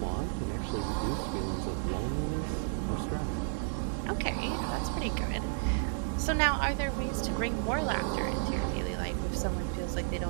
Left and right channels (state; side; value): silent; left; 56 dB below the other